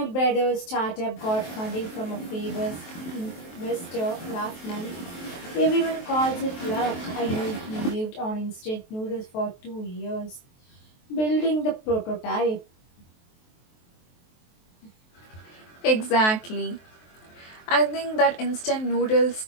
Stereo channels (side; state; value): right; late; 23 ms